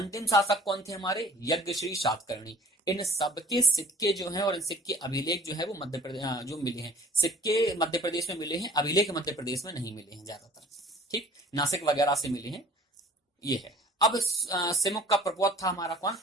शासक कौन थे हमारे, यज्ञश्री सातकर्णी। इन सबके सिक्के जो हैं और इन सिक्के अभिलेख जो है वो मध्य प्रदेश जो मिले हैं, सिक्के मध्य प्रदेश में मिले हैं, अभिलेख मध्य प्रदेश में नहीं मिले हैं ज्यादातर। ठीक, नासिक वगैरह से मिले हैं, ये है। अब सिमुक का प्रकोप था हमारा कौन,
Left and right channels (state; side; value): normal; both; correlation 0.49